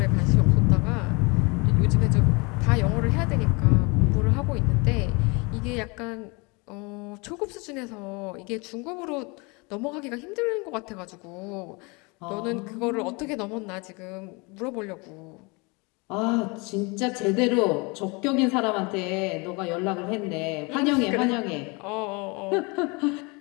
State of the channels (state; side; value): quieter; right; 28.4 dB